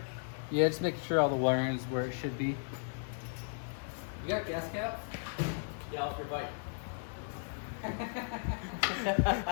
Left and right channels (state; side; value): silent; right; 54 dB below the other